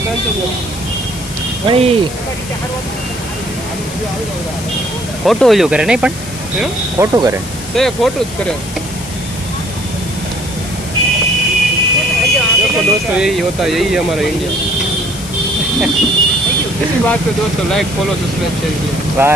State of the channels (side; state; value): left; noise; hiss, 12 dB below the sound